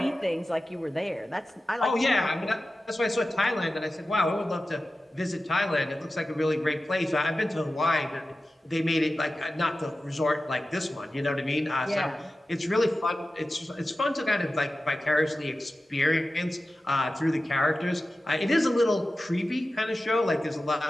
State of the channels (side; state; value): both; normal; correlation 0.94